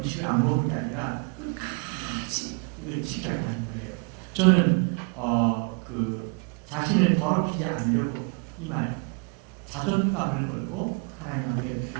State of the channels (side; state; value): left; quieter; 35.4 dB